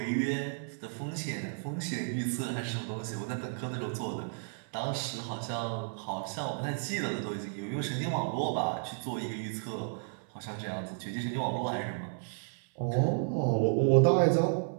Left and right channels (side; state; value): left; silent; 56 dB below the other